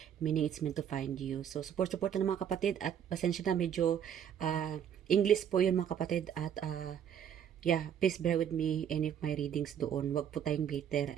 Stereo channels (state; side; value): quieter; left; 9.0 dB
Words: meaning it's meant to find you. So, support na ng mga kapatid at pasensya na medyo English po yun mga kapatid at yeah, please bear with me any of my readings doon. Wag po tayong bitter